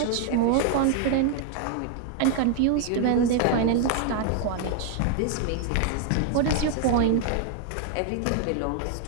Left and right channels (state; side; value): different; both; correlation 0.00